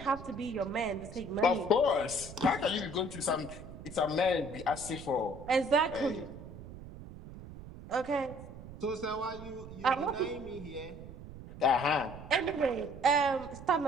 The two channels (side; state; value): right; noise; rumble, 14 dB below the sound